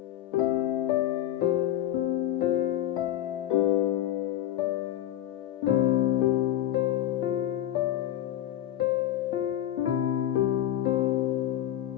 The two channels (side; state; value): right; quieter; 12.5 dB